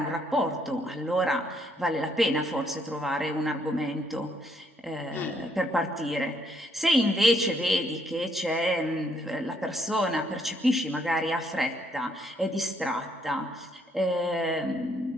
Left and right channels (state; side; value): normal; both; correlation 0.70